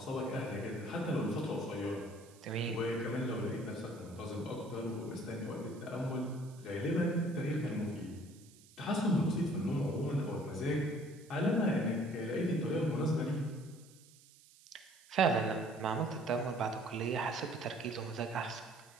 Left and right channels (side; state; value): right; noise; hiss, 24 dB below the sound